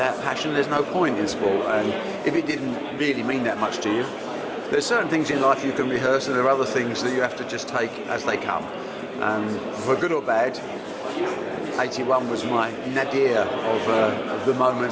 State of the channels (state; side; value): identical; both; correlation 1.00